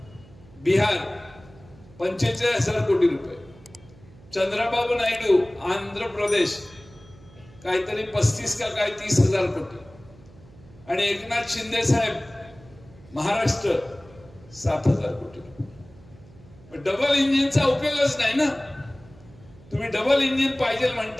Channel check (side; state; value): right; noise; hum, 23 dB below the sound